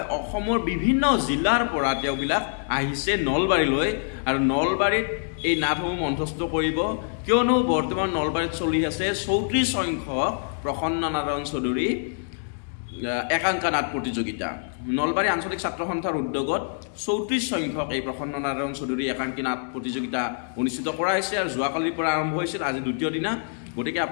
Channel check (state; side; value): silent; right; digital silence